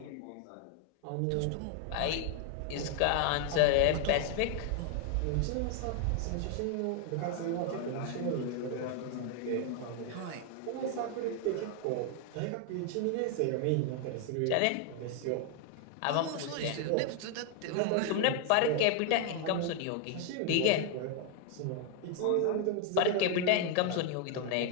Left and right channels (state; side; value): different; both; correlation 0.00